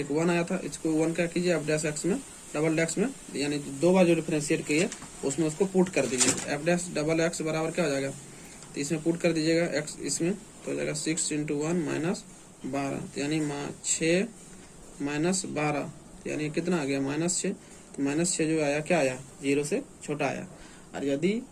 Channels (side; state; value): both; identical; correlation 1.00